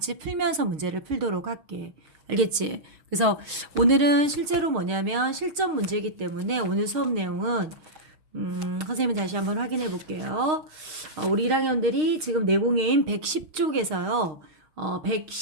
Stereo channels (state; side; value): late; left; 6.5 ms